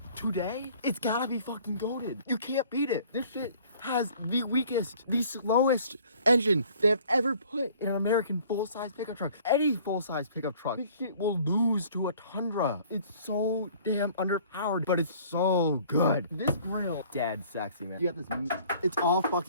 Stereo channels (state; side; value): inverted; both; correlation -0.53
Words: today, it's gotta be fucking goated. You can't beat it. This shit has the weakest, the slowest engine they've ever put in an American full-size pickup truck. Any full-size pickup truck, this shit will lose to a Tundra. It's so damn underpowered, but it's so good. This grill, dead sexy, man. You got this, it's all